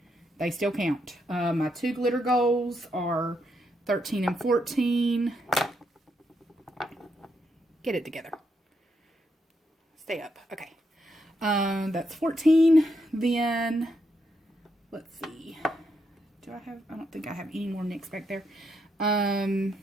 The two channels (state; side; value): normal; both; correlation 0.79